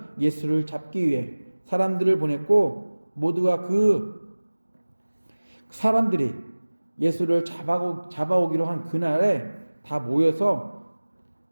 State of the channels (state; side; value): inverted; both; correlation -1.00